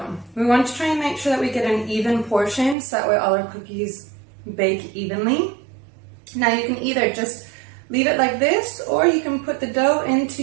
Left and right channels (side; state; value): left; drops out; at 2.8 s